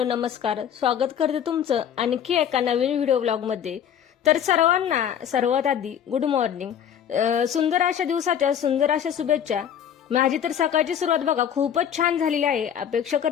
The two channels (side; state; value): right; quieter; 9.0 dB